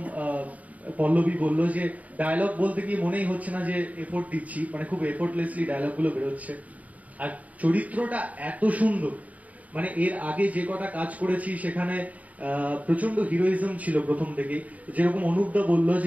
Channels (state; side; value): late; left; 0.071 ms